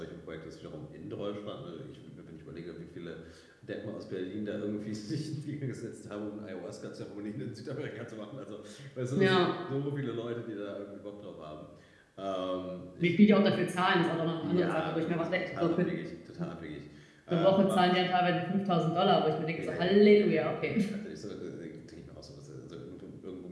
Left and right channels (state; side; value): identical; both; correlation 1.00